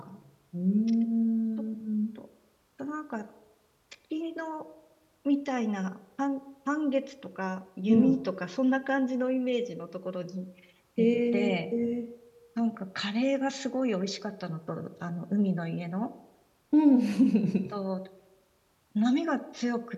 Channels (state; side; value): identical; both; correlation 1.00